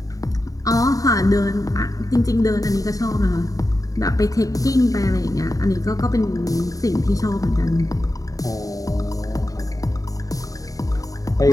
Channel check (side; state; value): right; late; 0.17 ms